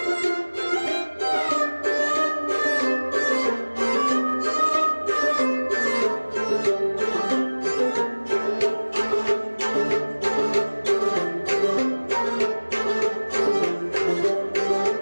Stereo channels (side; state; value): both; inverted; correlation -1.00